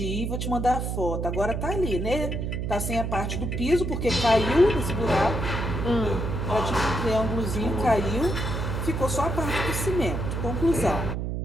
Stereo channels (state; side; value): noise; right; hum, 2 dB below the sound